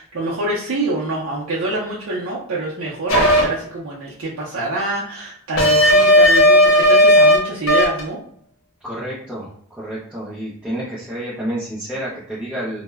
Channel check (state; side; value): normal; both; correlation 0.00